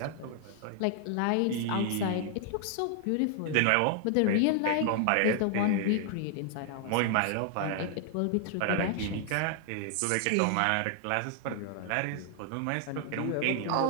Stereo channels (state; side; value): different; both; correlation 0.00